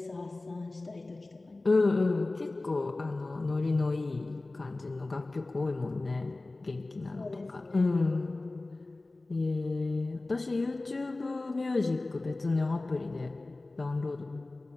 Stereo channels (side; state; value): right; quieter; 3.1 dB